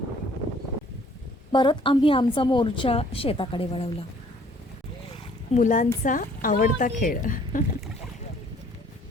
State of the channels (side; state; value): both; normal; correlation 0.58